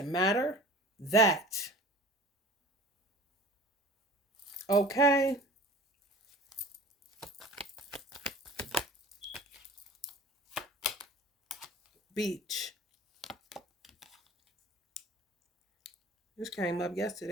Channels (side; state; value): both; normal; correlation 0.41